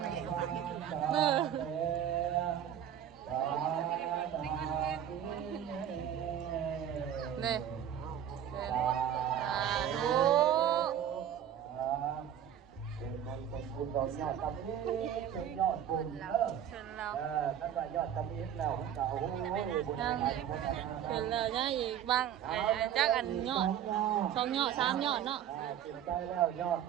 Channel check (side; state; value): left; quieter; 10.0 dB